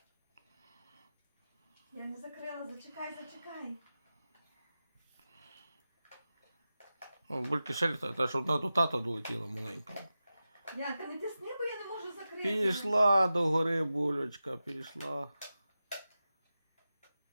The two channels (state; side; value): inverted; both; correlation -0.94